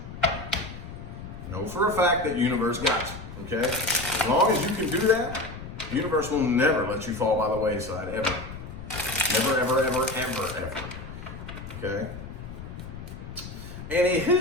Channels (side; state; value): left; noise; rumble, 12 dB below the sound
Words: Know for a fact that universe got you, okay? As long as you can do that, the universe will never let you fall by the wayside, ever. Never, ever, ever, ever, ever. Okay?